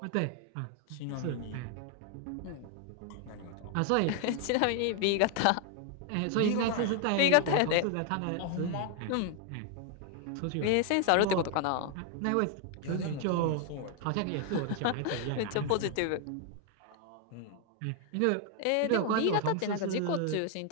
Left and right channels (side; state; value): both; different; correlation 0.00